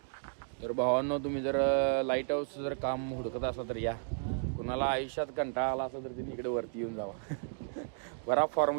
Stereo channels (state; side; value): silent; left; digital silence